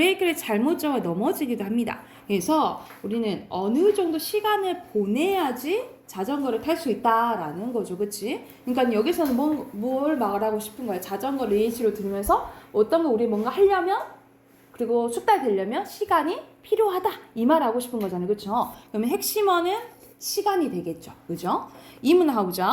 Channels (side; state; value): both; identical; correlation 1.00